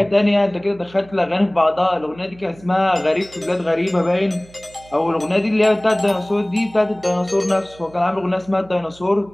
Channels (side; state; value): right; noise; hum, 24 dB below the sound